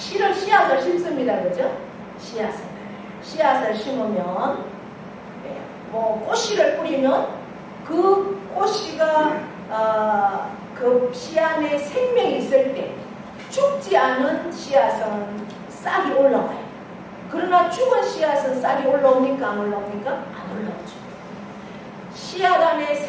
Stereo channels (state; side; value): identical; both; correlation 1.00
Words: 심습니다. 그죠? 씨앗을 심으면 꽃씨를 뿌리면 그 꽃씨가 그 씨 안에 생명이 있을 때 죽지 않은 씨앗은 싹이 올라와요. 그러나 죽은 씨앗은 싹이 올라옵니까? 안 올라옵니까? 안 올라오죠. 씨앗 안에